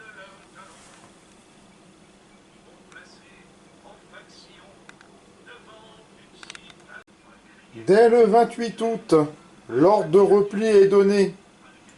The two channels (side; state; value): both; identical; correlation 1.00